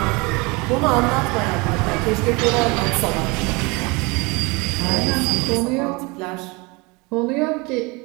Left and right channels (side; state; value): left; quieter; 26.7 dB